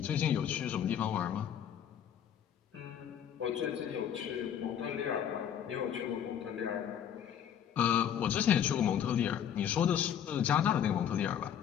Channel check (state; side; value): quieter; right; 9.2 dB